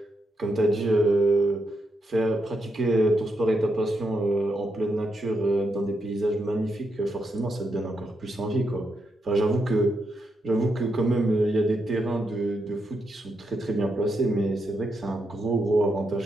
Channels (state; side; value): normal; both; correlation 0.82